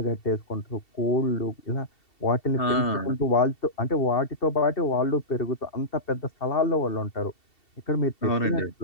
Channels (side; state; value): right; late; 2.7 ms